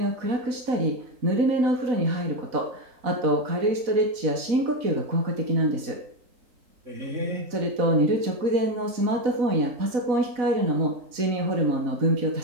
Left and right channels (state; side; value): late; left; 4.1 ms